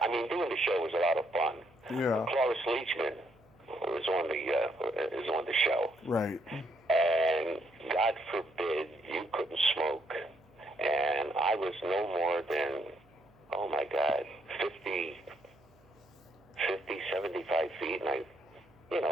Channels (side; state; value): right; noise; hum, 30 dB below the sound